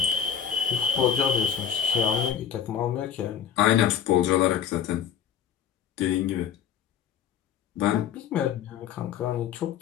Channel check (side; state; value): right; quieter; 8.7 dB